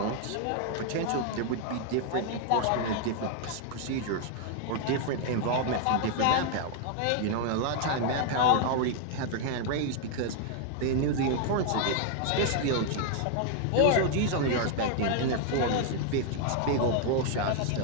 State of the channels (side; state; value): both; different; correlation 0.00